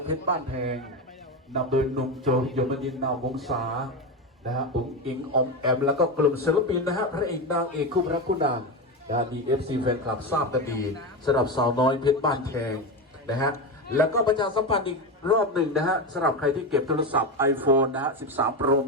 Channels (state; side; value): normal; both; correlation 0.17